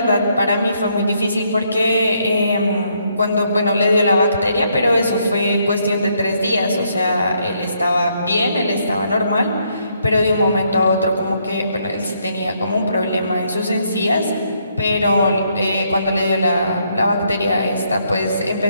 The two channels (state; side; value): inverted; both; correlation -0.73